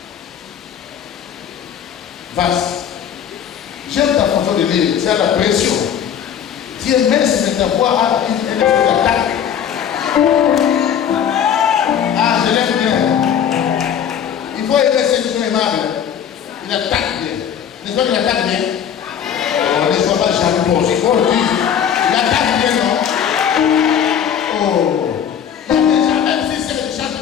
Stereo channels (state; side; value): quieter; right; 8.7 dB